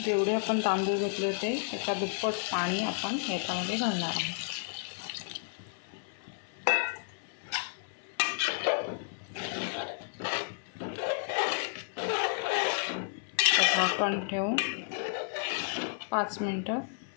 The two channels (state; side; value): silent; right; 57 dB below the other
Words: जेवढे आपण तांदूळ घेतले होते त्याच्या दुप्पट पाणी आपण याच्यामध्ये घालणार आहोत। झाकण ठेवून 5 मिनिटं